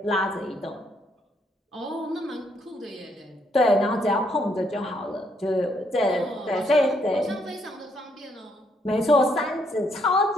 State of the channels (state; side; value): normal; both; correlation 0.72